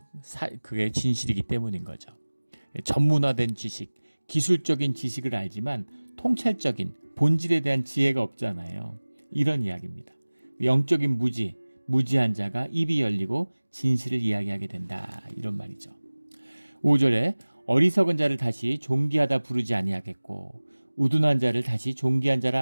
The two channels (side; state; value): both; inverted; correlation -1.00